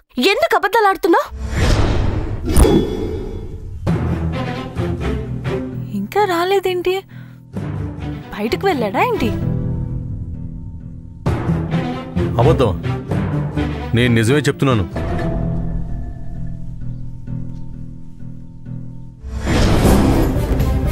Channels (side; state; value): both; identical; correlation 1.00